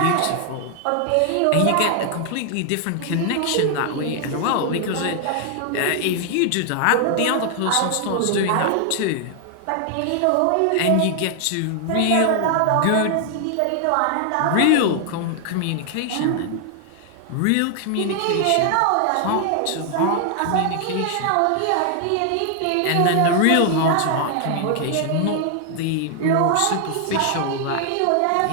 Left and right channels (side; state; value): both; different; correlation 0.00